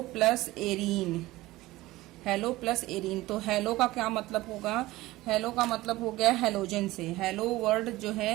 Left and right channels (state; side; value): quieter; left; 18.2 dB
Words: plus arene. Hello plus arene, तो हेलो का क्या मतलब होगा? हेलो का मतलब हो गया हेलोजन से। हेलो वर्ड जो